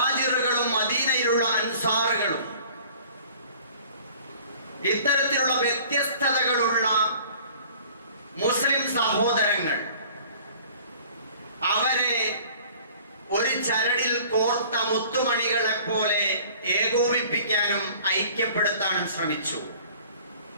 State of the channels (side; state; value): both; inverted; correlation -0.49